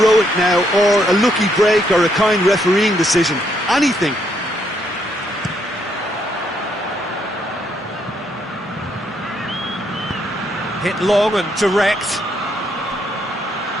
now, or a lucky break, or a kind refereeing decision. Anything. Hit long and direct.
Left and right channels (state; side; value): normal; both; correlation 0.74